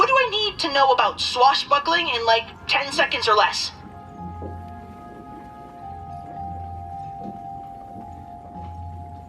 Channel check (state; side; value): identical; both; correlation 1.00